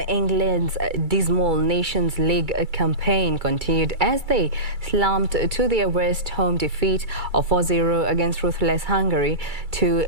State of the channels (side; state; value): left; late; 2.3 ms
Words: England's dismal Nations League campaign continued as they slumped to their worst home defeat of 4-0 against ruthless Hungary to